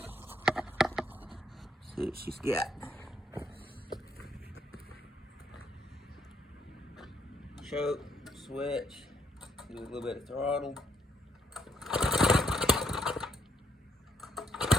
See what she's got. Choke, switch, do a little bit of throttle.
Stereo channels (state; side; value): normal; both; correlation 0.74